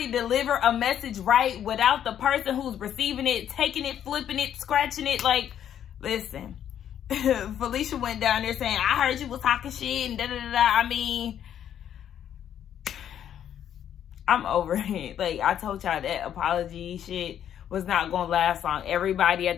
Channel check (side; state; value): right; quieter; 9.9 dB